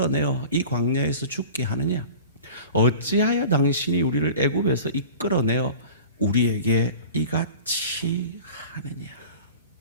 이 광야에서 죽게 하느냐? 어찌하여 당신이 우리를 애굽에서 이끌어내어 우리에게 이같이 하느냐.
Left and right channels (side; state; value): both; inverted; correlation -0.39